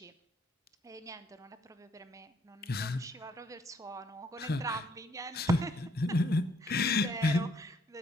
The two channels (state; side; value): normal; both; correlation 0.67